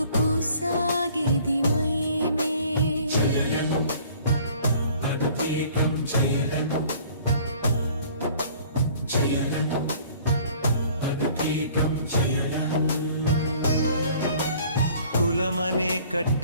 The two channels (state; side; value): inverted; both; correlation -0.53